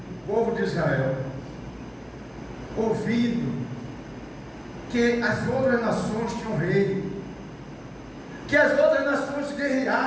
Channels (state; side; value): identical; both; correlation 1.00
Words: o povo de Israel, ouvindo que as outras nações tinham rei, que as outras nações